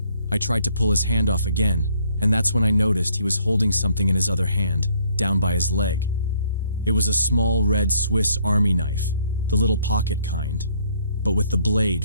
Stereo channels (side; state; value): both; inverted; correlation -0.65